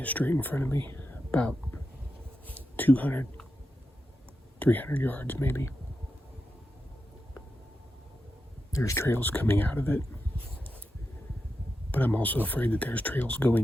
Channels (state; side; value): normal; both; correlation 0.88